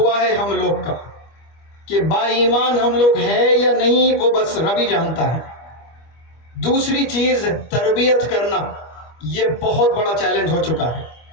ہے ہم لوگ کا کہ با ایمان ہم لوگ ہے یا نہیں، وہ بس رب ہی جانتا ہے. دوسری چیز تربیت کرنا، یہ بہت بڑا چیلنج ہو چکا ہے.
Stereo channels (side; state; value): right; late; 25 ms